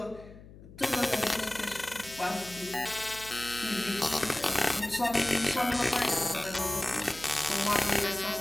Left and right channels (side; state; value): left; noise; hum, 19 dB below the sound